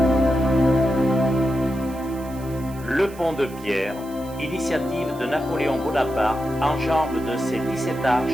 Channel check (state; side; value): noise; right; hiss, 21 dB below the sound